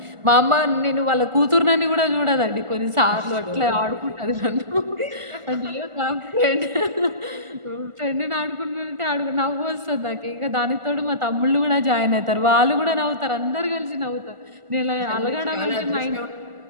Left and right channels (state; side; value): late; left; 1.4 ms